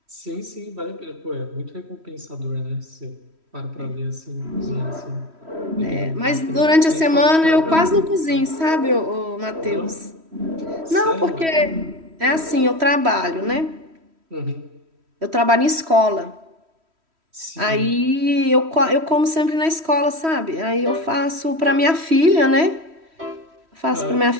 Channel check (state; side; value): late; left; 3.1 ms